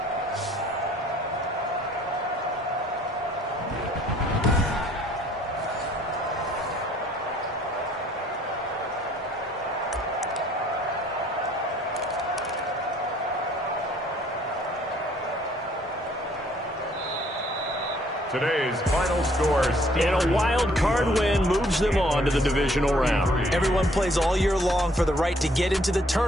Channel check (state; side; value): normal; both; correlation 0.61